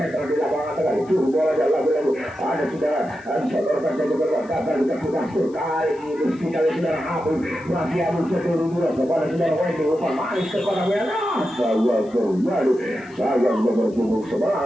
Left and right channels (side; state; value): left; noise; hiss, 29 dB below the sound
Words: di lapangan tengah dicuri bola dan lagu-lagu ada saudara saudarakan saja bola gagal di kaki Mastur kali ini kita lihat saudara Habib masih abu seluruh kepada saudara Wendy umpan manis kepada Wena saya terjadi saya nomor 11